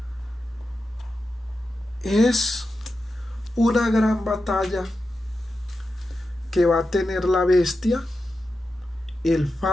es una gran batalla que va a tener la bestia, el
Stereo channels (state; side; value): normal; both; correlation 0.90